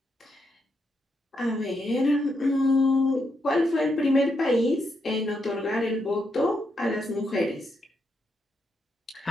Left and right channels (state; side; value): normal; both; correlation 0.81